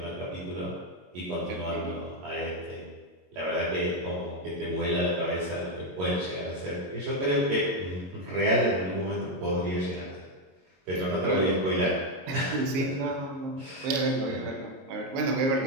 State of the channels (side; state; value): left; late; 22 ms